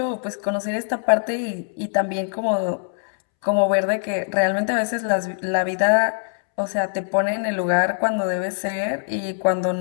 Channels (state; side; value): silent; right; 64 dB below the other